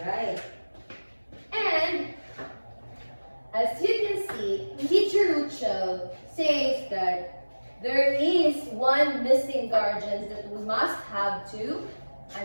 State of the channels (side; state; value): both; inverted; correlation -1.00